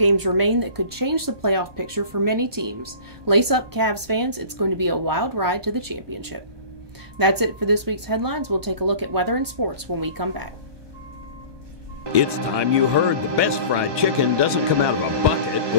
remain that could change the playoff picture for many teams. Lace up, Cavs fans. It's going to be a wild ride to the championship. That's it for this week's headlines. We'll take a look at weather and sports when we come back. It's time you heard the best fried chicken doesn't come out of a bucket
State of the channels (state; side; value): late; left; 1.2 ms